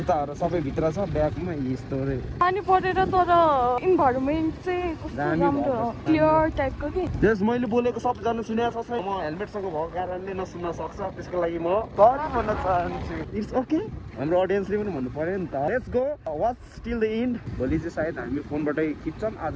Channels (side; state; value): both; identical; correlation 1.00